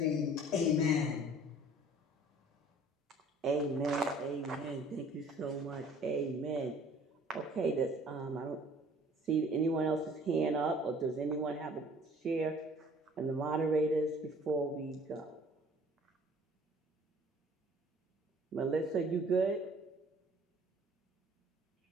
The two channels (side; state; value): both; normal; correlation 0.52